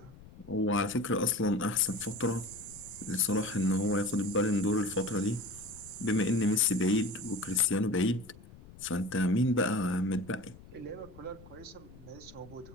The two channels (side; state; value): left; noise; rumble, 20 dB below the sound